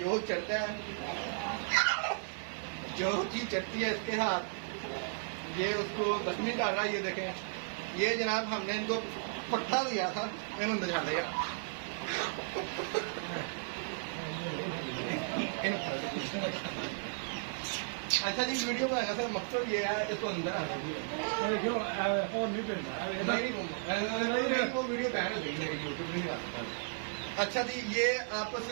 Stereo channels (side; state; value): left; silent; digital silence